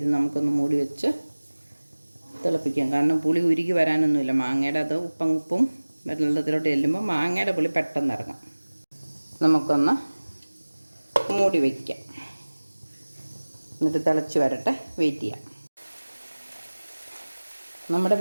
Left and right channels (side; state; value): both; inverted; correlation -1.00